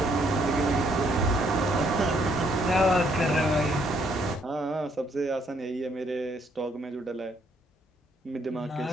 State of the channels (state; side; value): normal; both; correlation 0.69